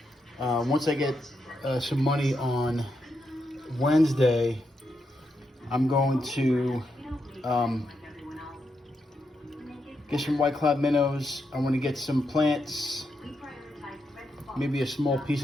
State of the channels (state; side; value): normal; both; correlation 0.83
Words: once I get some money on Wednesday. I'm going to get some white cloud minnows. I want to get some plants, maybe a small piece